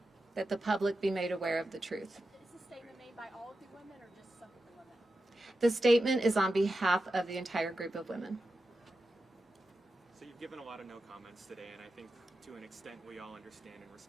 that the public be made aware of the truth. Is this statement made by all of the women or just some of the women? The statement is on behalf of the entire group of women. So you've given a lot of no comments today, and I think to an extent we all understand and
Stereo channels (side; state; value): both; normal; correlation 0.90